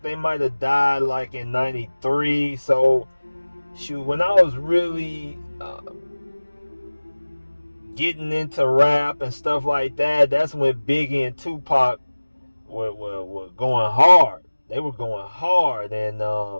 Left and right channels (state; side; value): inverted; both; correlation -1.00